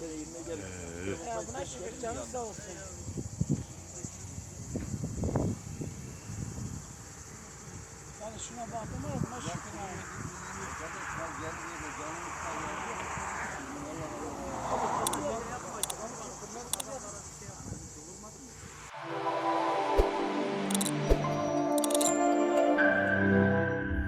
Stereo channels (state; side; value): identical; both; correlation 1.00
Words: Buna şükür canın sağ olsun. Yani şuna baktım ama buna şükür.